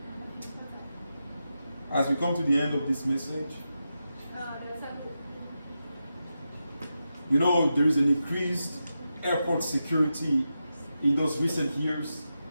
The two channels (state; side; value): inverted; both; correlation -0.89